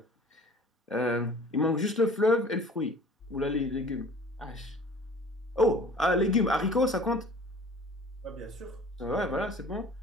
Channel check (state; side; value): normal; both; correlation 0.47